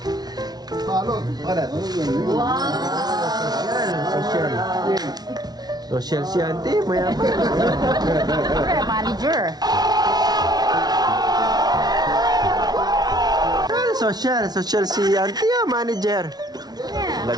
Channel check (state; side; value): late; left; 0.19 ms